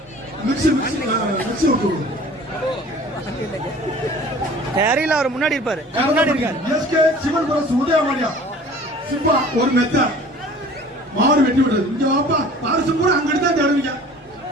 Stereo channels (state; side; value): normal; both; correlation 0.46